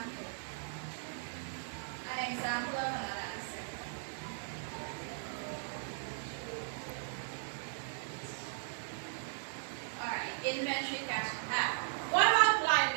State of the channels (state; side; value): silent; left; digital silence